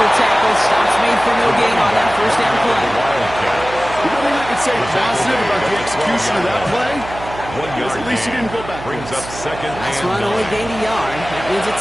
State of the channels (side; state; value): right; noise; hum, 13 dB below the sound